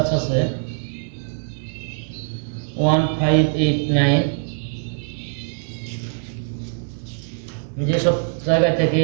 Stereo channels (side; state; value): left; silent; digital silence